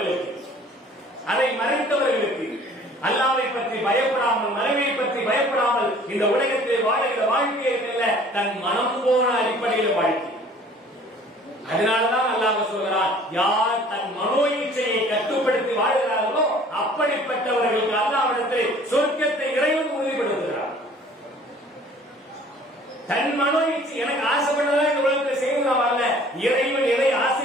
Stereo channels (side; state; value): both; normal; correlation 0.51